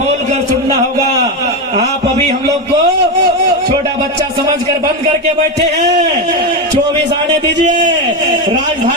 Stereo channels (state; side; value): normal; both; correlation 0.12